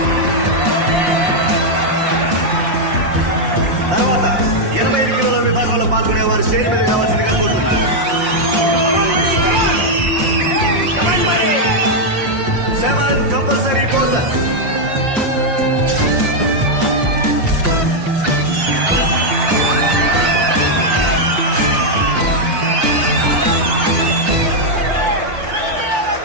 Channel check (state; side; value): late; left; 5.7 ms